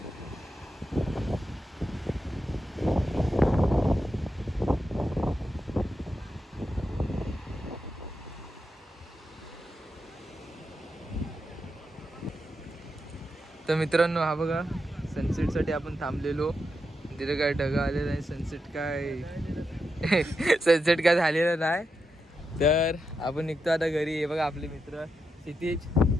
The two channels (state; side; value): normal; both; correlation 0.86